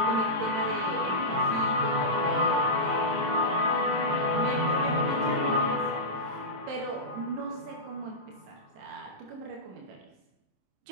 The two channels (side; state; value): left; late; 27 ms